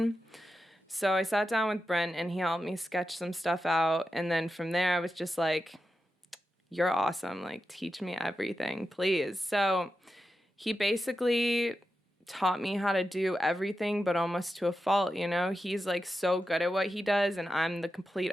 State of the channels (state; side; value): normal; both; correlation 0.90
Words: So I sat down with Brent, and he helped me sketch some stuff out. And then from there, I was just like, you're awesome. Like, teach me everything, please. So he basically taught me how to do everything, but almost to a fault, you know? He's like so good at what he does, and I'm the complete